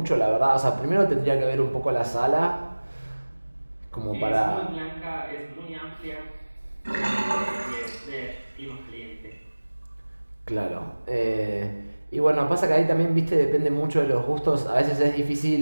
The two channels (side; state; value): both; inverted; correlation -1.00